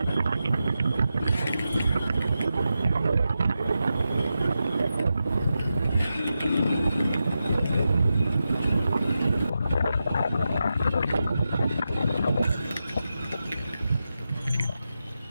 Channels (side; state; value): both; inverted; correlation -0.90